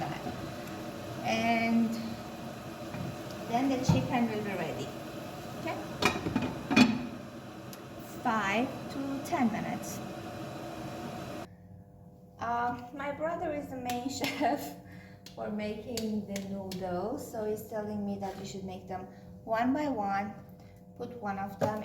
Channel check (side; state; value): both; identical; correlation 1.00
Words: And then the chicken will be ready. Okay, 5 to 10 minutes. My brother is the main chef for making the noodles, so he's telling me that we should make them one by one. Put one of them